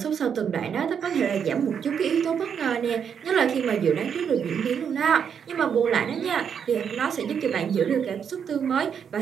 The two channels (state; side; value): quieter; left; 7.5 dB